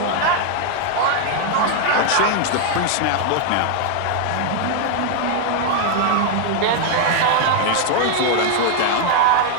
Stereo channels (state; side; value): different; both; correlation 0.00